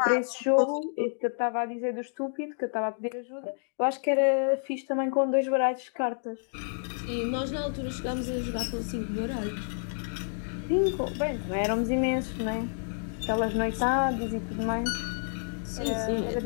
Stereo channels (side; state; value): right; silent; digital silence